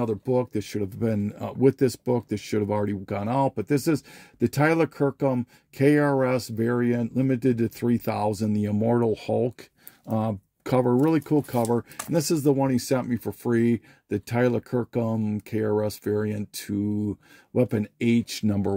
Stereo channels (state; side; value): identical; both; correlation 1.00